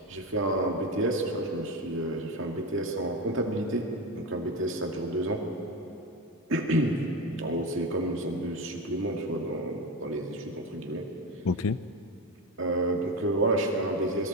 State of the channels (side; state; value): both; normal; correlation 0.19